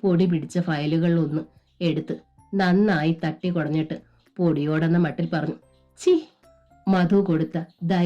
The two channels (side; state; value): both; identical; correlation 1.00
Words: പൊടി പിടിച്ച ഫയലുകളിലൊന്ന് എടുത്ത് നന്നായി തട്ടി കുടഞ്ഞിട്ട് പൊടിയോടെന്ന മട്ടിൽ പറഞ്ഞു, ചി. മധു കൊടുത്ത